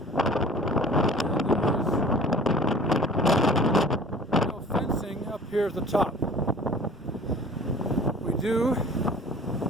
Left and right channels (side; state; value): both; normal; correlation 0.45